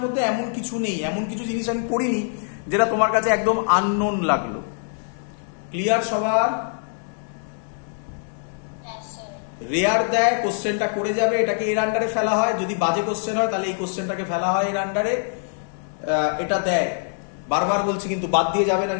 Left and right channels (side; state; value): right; silent; 63 dB below the other